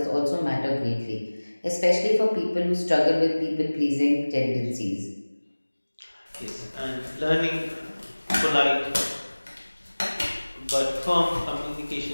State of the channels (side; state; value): both; inverted; correlation -1.00